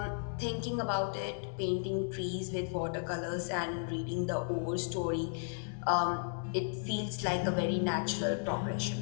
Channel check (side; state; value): right; silent; 55 dB below the other